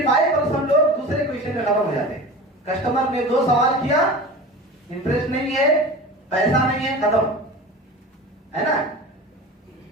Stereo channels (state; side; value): normal; both; correlation 0.34